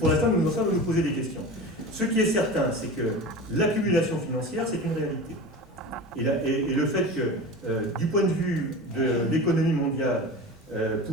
l'instant, nous en sommes à nous poser des questions. Ce qui est certain, c'est que l'accumulation financière, c'est une réalité. Et le fait que, du point de vue de l'économie mondiale,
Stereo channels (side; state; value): both; normal; correlation 0.32